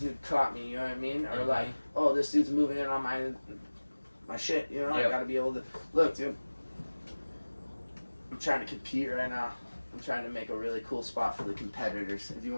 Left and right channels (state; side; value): inverted; both; correlation -1.00